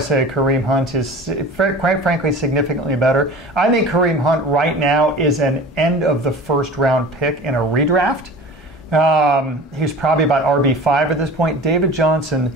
Kareem Hunt is, quite frankly, significantly better. I think Kareem Hunt right now is an end of the first round pick in a redraft. He's probably about RB5 at this point. David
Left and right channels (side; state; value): both; normal; correlation 0.39